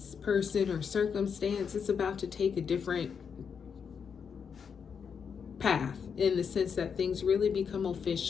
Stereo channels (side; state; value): right; quieter; 6.6 dB